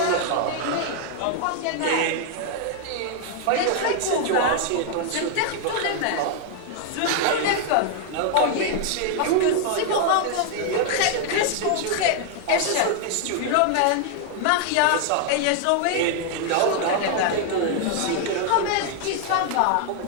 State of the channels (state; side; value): different; both; correlation 0.00